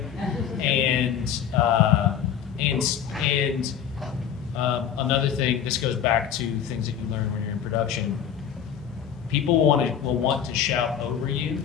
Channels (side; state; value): right; quieter; 8.6 dB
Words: And another thing, this goes back to the things that you learn when you're in production. People will want to shout over you.